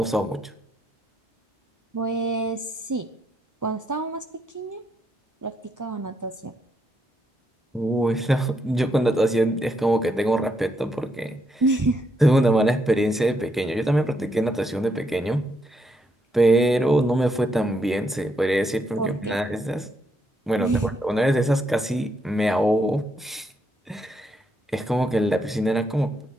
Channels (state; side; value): normal; both; correlation 0.77